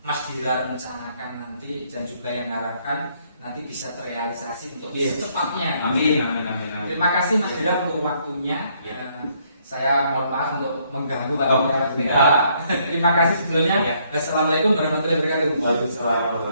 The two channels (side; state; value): both; inverted; correlation -0.69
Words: Mas Dira rencanakan nanti dan juga yang harapkan nanti bisa terrealisasi untuk Yes. secepatnya. Amin, amin, amin, amin. Terima kasih Mas Dira untuk waktunya. Ya. Saya mohon maaf untuk mengganggu Pak. Oh, Terima kasih sebelumnya. Ya. Assalamualaikum warahmatullahi wabarakatuh. Waalaikumsalam